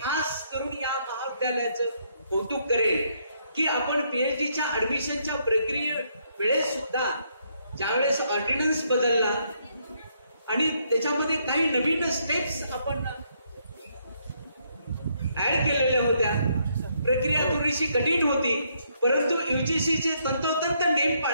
करून या महाविद्यालयाचं कौतुक करेल की आपण PhDच्या ऍडमिशनच्या प्रक्रिये वेळेस सुद्धा ज्यावेळेस ऑर्डिनन्स बदलला आणि त्याच्यामध्ये काही नवीन स्टेप्स आपण ऍड केलेल्या होत्या. प्रक्रिया थोडीशी कठीण होती परंतु UGCचे तंतोतंत नेम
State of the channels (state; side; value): inverted; both; correlation -0.73